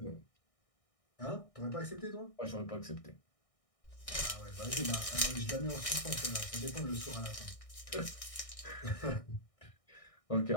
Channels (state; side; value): late; right; 1.6 ms